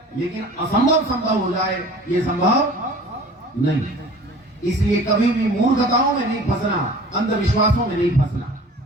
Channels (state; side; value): normal; both; correlation 0.44